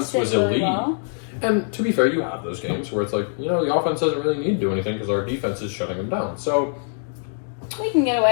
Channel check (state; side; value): silent; right; digital silence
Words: was elite. Well. And to be fair, you have those games where it's like, the offense doesn't really need to do anything because our defense is shutting them down. So we can get